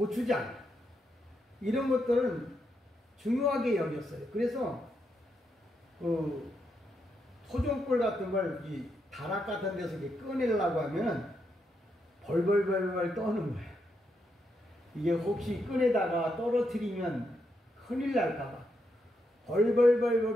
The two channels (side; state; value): both; normal; correlation 0.81